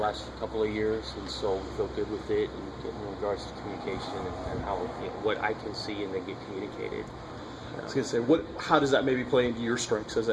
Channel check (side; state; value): both; identical; correlation 1.00